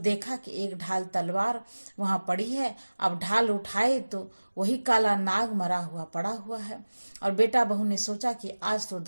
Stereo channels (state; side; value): inverted; both; correlation -1.00